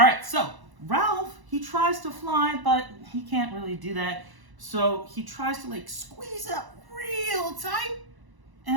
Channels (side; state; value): left; late; 1.0 ms